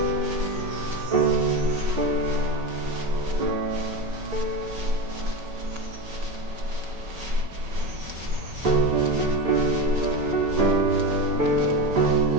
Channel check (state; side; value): late; left; 5.3 ms